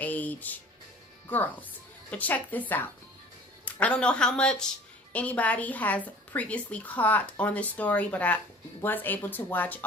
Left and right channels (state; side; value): normal; both; correlation 0.46